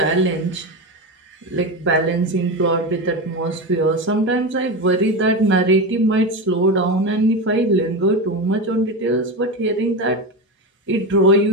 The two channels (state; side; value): normal; both; correlation 0.18